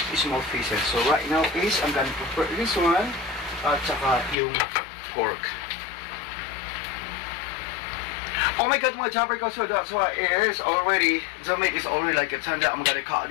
small pieces. So right now is I'm gonna prepare this one at saka yung pork. Oh my god, mga jabber ko, so that's why it is already, the meat is already like a tender. I'm gonna cut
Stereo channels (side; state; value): right; drops out; at 4.4 s